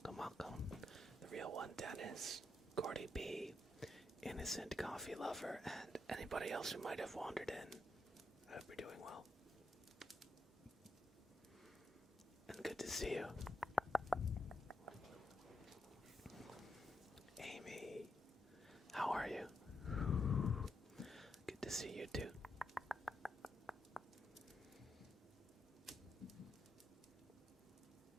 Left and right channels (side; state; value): both; normal; correlation 0.83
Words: welcome. The real one, Dennis, Gordy B, Innocent Coffee Lover, and anybody else who might have wandered in. I hope you're doing well. And good to see you. Amy, how are you? Good to see you too.